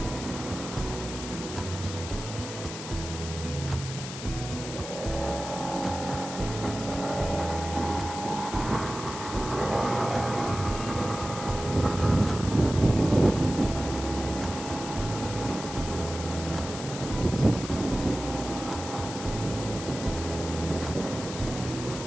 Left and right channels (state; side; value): noise; left; hiss, 10 dB below the sound